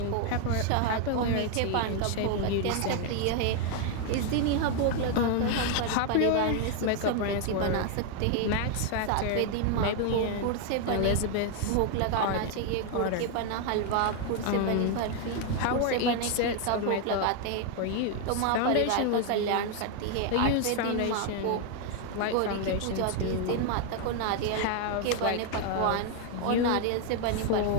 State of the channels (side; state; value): both; different; correlation 0.00